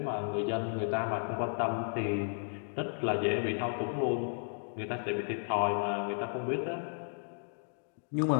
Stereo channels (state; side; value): silent; right; digital silence